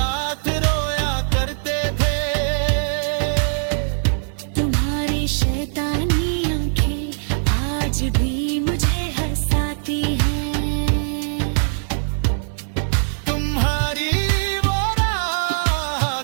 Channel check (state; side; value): silent; left; digital silence